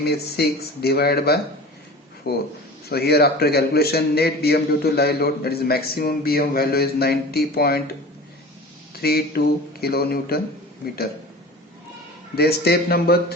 is 6 divided by 4. So here after calculation, net BM due to live load, that is maximum BM value is 90.32 kilonewton meter. Then step number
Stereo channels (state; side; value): normal; both; correlation 0.37